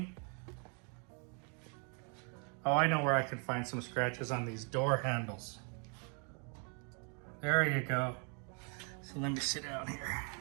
Oh, I know where I can find some scratches on these door handles. There you go. So let me sit down here.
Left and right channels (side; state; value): left; quieter; 38.5 dB